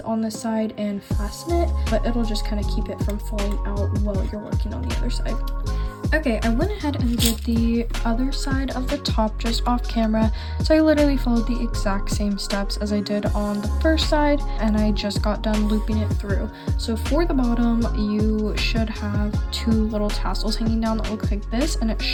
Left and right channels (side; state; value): both; identical; correlation 1.00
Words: on this side and fasten it, but it'll just kind of keep it from falling out while you're working on the other side. Okay, I went ahead and did the other side of the top just off camera, so I literally followed the exact same steps as I did on the first side, and I just got done looping it through. So for the bottom, you should have two little tassels hanging down that look like this, and it